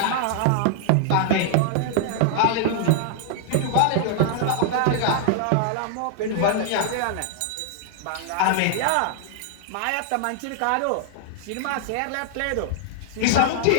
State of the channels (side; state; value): both; different; correlation -0.01